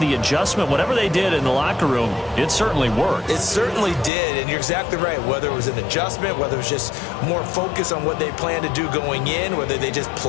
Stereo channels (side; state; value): right; drops out; at 4.1 s